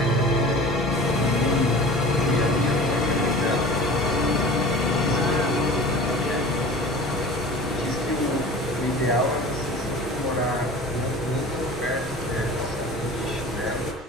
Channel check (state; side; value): normal; both; correlation 0.40